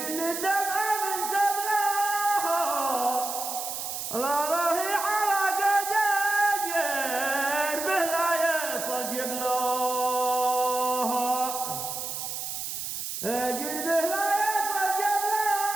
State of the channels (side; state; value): right; noise; hiss, 5 dB below the sound